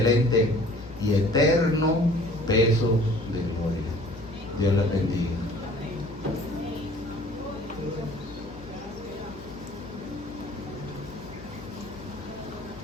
y eterno peso de gloria. Dios les bendiga.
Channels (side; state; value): left; noise; hum, 17 dB below the sound